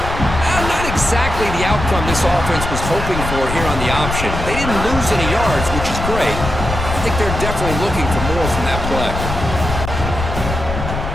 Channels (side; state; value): left; noise; rumble, 5 dB below the sound